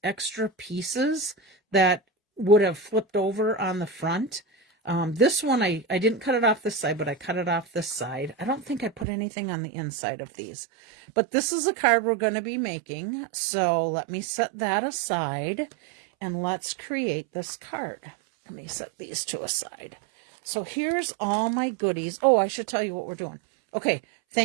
extra pieces that would have flipped over on the front. This one, I didn't cut it off this side, but I cut it off this side. I don't think I put anything on the inside of these. But this is a card we're going to be making. So let me set that aside and let's create this card. Let me set these two aside. So here's all my goodies. Oh, I should tell you what we're doing. Okay,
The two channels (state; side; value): drops out; left; at 9.1 s